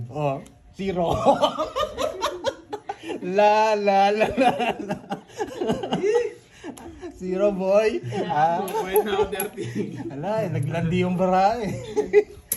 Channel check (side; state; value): both; identical; correlation 1.00